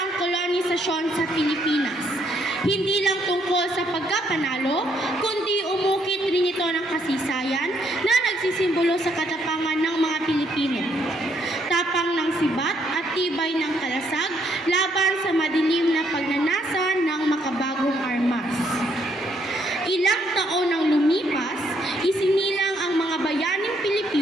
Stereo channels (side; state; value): both; normal; correlation 0.71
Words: ang kolonisasyon sa Pilipinas. Hindi lang tungkol sa pagkapanalo, kundi umukit rin ito ng kasaysayan na nagsisimbolo sa katapangan ng mga Pilipino. Tapang ng sibat at tibay ng kalasag laban sa madilim na pagnanasa ng makabagong armas. Ilang taon nang lumipas, isinilang ang mga bayaning